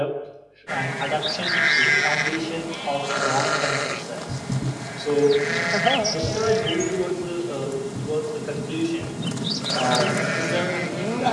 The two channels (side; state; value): both; identical; correlation 1.00